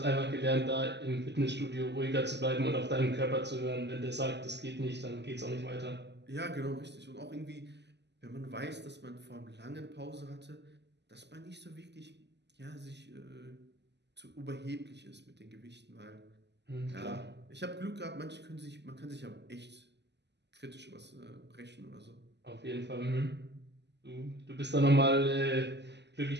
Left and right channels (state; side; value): late; left; 0.50 ms